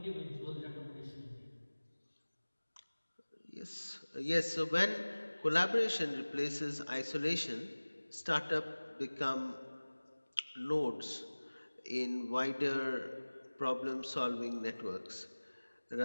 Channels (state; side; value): inverted; both; correlation -1.00